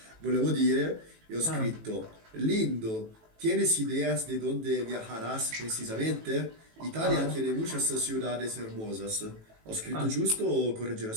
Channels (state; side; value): late; left; 18 ms